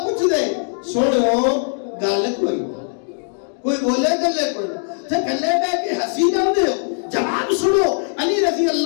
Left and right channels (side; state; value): right; silent; digital silence